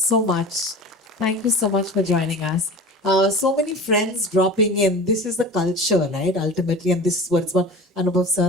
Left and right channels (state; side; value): normal; both; correlation 0.36